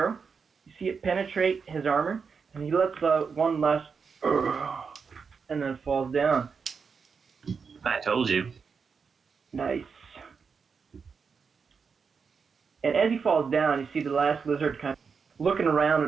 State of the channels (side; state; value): left; quieter; 5.7 dB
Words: you see it penetrate his armor, and he lets out one last, and then falls down. I told you. Nice. And as he falls down, you see the last lizard kind of looking around